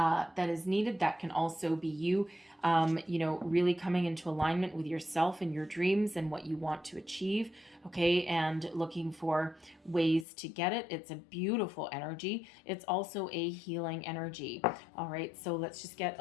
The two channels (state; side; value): drops out; right; at 10.2 s